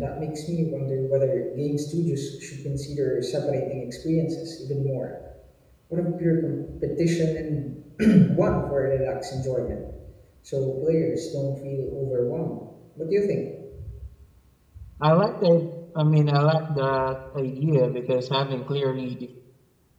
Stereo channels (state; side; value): identical; both; correlation 1.00